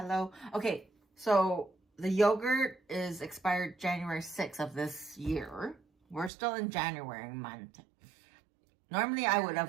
Okay, so the yogurt is expired January 6th of this year. We're still in January month. Normally I would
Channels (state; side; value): drops out; left; at 6.3 s